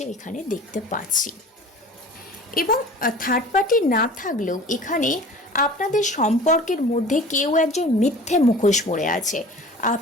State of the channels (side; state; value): both; normal; correlation 0.42